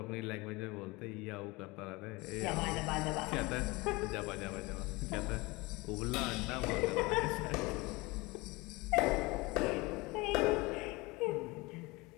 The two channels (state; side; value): quieter; right; 23.7 dB